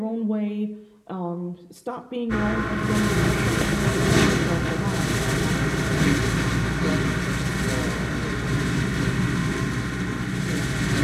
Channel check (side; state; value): both; identical; correlation 1.00